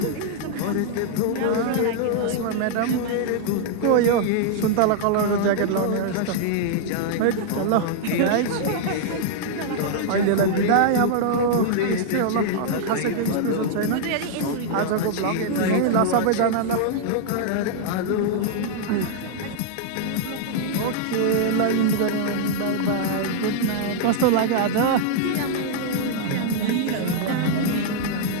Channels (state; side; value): different; both; correlation -0.01